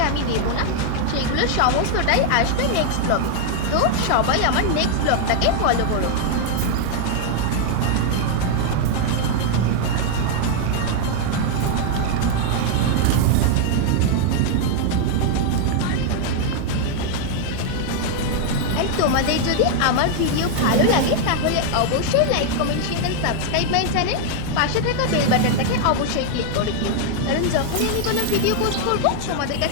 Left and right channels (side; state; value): both; different; correlation 0.00